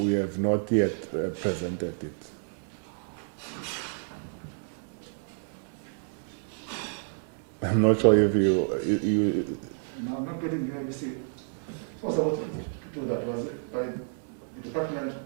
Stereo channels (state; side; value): silent; left; digital silence